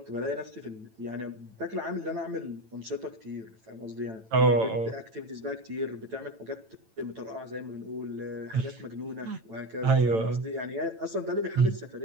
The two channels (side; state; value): left; late; 9.0 ms